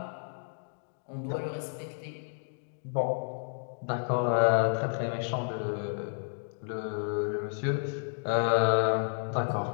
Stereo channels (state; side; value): silent; right; digital silence